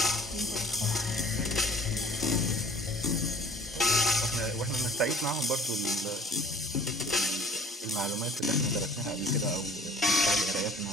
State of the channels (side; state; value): both; normal; correlation 0.49